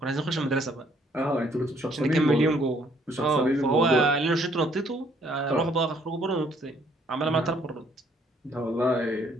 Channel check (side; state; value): both; normal; correlation 0.65